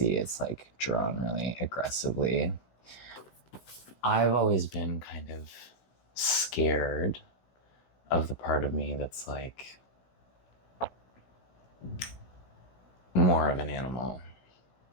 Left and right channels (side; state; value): right; late; 16 ms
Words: it's like drawn really aggressively. I've always been kind of scared of the part of me that's like more of an animal.